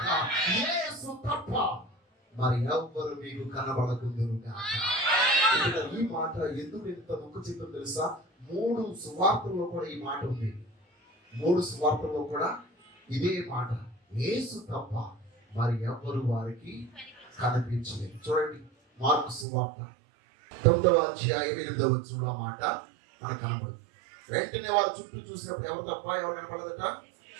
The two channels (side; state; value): left; drops out; at 19.5 s